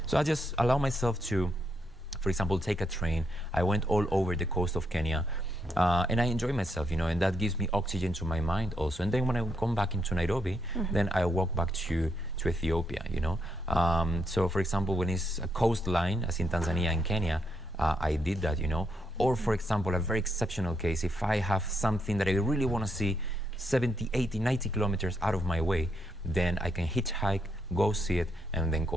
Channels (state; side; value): normal; both; correlation 0.78